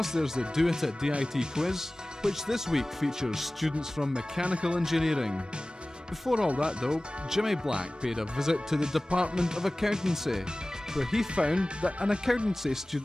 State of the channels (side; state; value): both; normal; correlation 0.98